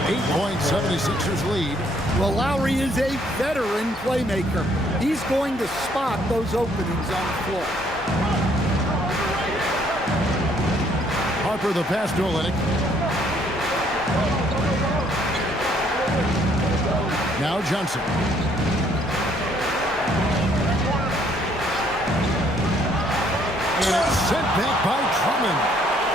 8-point 76ers lead. Well, Lowry is a veteran playmaker. He's going to spot those openings on the floor. Harper the pass to Olynyk. Now Johnson. And it's sent back by Drummond.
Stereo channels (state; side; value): normal; both; correlation 0.65